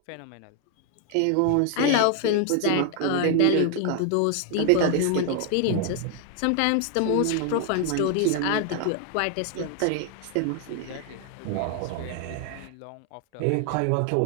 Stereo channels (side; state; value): both; different; correlation 0.00